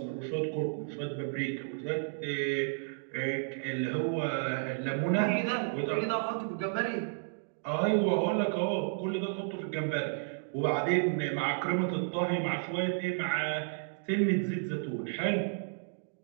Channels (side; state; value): left; silent; digital silence